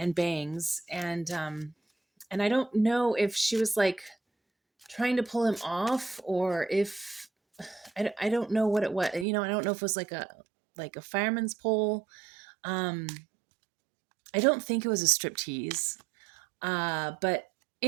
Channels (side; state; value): left; drops out; at 9.2 s